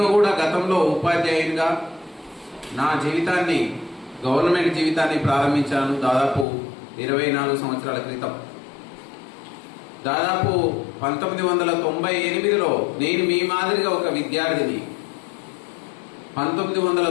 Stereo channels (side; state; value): right; drops out; at 6.5 s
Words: కూడా గతంలో ఉపాధ్యాయునిగా నా జీవితాన్ని, గవర్నమెంట్ జీవితాన్ని ప్రారంభించాను దాదాపు 24 సంవత్సరాల క్రితం. దాదాపు 1998లో నేను మీ మాదిరిగా ఒక విద్యార్థిని.